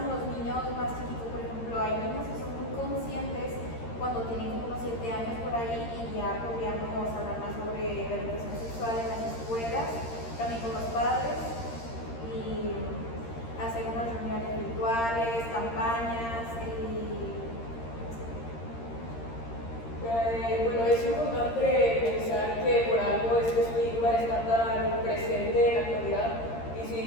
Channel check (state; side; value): late; right; 13 ms